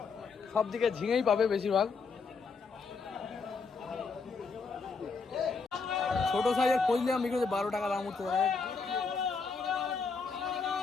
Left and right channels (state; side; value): quieter; right; 4.7 dB